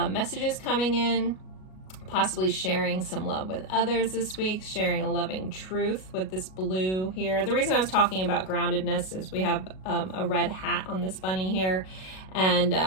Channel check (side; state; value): right; late; 37 ms